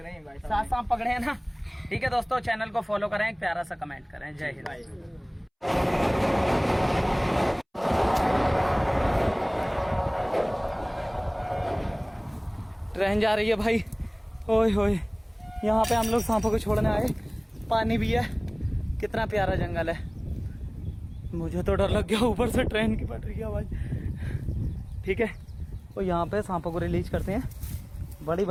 हैं भाई, 7 सांप पकड़े हैं ना। ठीक है दोस्तों, चैनल को फॉलो करें, एक प्यारा सा कमेंट करें। जय हिंद। ट्रेन जा रही है भाई। ओए होए, यहाँ पे हम लोग सांपों को छोड़ने आए। पानी भी है, कितना प्यारा जंगल है। मुझे तो डर लग गया, ऊपर से ट्रेन की पटरी की आवाज। ठीक है, तो यहाँ पे सांपों को रिलीज करते हैं। बड़ी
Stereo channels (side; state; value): both; identical; correlation 1.00